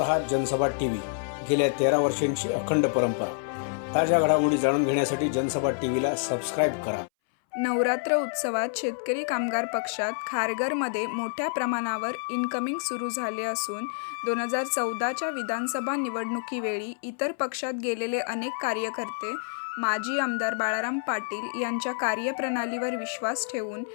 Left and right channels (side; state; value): right; silent; 60 dB below the other